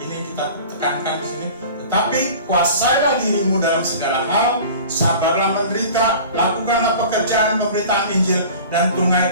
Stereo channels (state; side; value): inverted; both; correlation -0.41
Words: ini kita tekankan di sini. "Tetapi kuasailah dirimu dalam segala hal, sabarlah menderita, lakukanlah pekerjaan pemberitaan Injil, dan